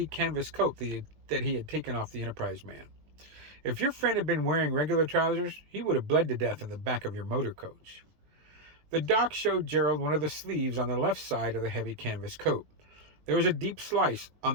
canvas coat that he had taken off the Enterprise man. If your friend had been wearing regular trousers, he would have bled to death in the back of your motor coach. The doc showed Gerald one of the sleeves on the left side of the heavy canvas coat. There was a deep slice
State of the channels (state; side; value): late; left; 20 ms